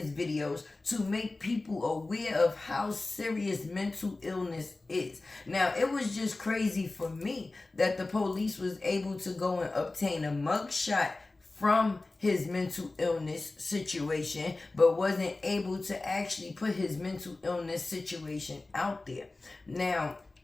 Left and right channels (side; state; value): right; quieter; 3.2 dB